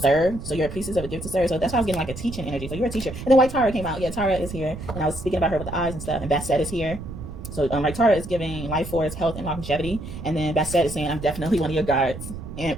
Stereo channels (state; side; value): noise; right; rumble, 10 dB below the sound